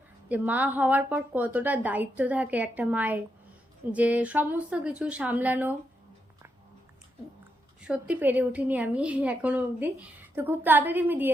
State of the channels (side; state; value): both; normal; correlation 0.82